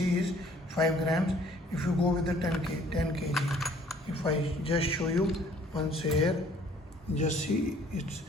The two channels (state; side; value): normal; both; correlation 0.57